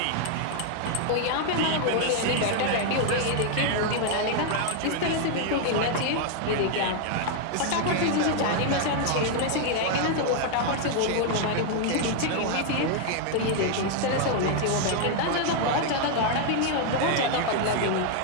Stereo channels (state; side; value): different; both; correlation 0.00